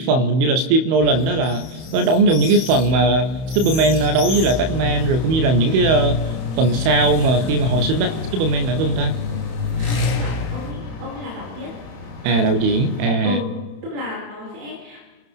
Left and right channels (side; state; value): left; late; 31 ms